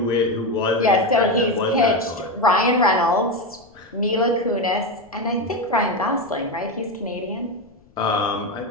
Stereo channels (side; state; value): left; noise; rumble, 29 dB below the sound